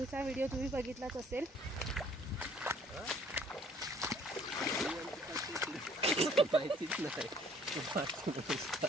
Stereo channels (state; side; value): normal; both; correlation 0.58